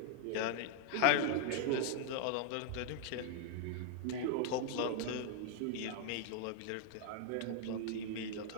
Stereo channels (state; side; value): different; both; correlation 0.00